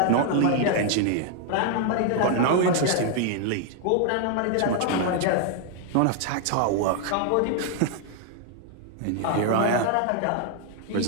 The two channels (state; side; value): different; both; correlation 0.00